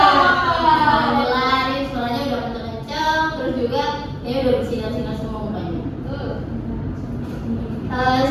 Alhamdulillah, ini suaranya udah kenceng-kenceng, terus juga ini udah bersinar-sinar semua mukanya.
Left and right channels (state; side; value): identical; both; correlation 1.00